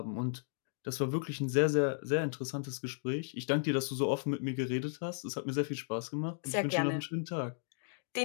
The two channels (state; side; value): silent; right; digital silence